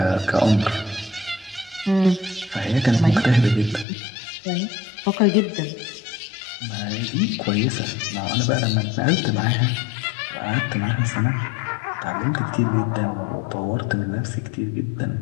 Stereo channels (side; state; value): right; drops out; at 3.9 s